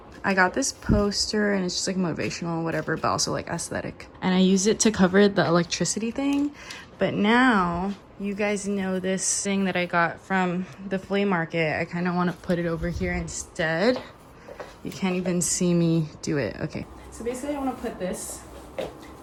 I got this poster and it's just like motivational, whatever, but also like aesthetic. And I used it to cover the electricity thing. But now you guys know this thing that I got from the flea market. I kind of want to put it over here instead. You can't even see me do it. Okay. So basically I want to put this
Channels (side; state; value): both; identical; correlation 1.00